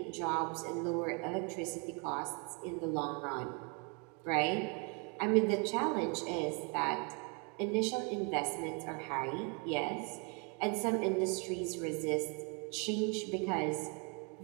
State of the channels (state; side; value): quieter; left; 34.6 dB